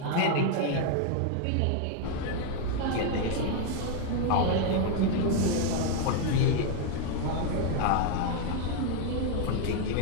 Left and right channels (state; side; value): different; both; correlation 0.01